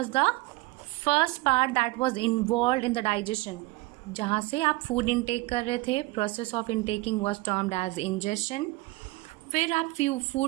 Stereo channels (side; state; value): left; quieter; 21.7 dB